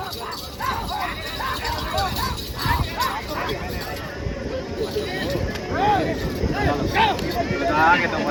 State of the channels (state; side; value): identical; both; correlation 1.00